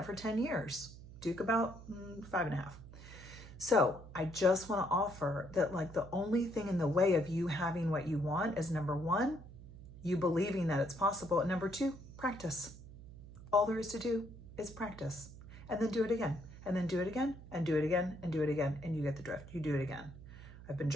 for 10 years. Duke about 5.5. So I just want to offer that like the only thing in the way of you having what you want is, number one, you believing that it's possible. And number two, practice. All there is to do is practice, and then do it again, and then do it again, and do it again, and do it again. And you get the drift. You do it again. I've been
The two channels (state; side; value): noise; right; hum, 16 dB below the sound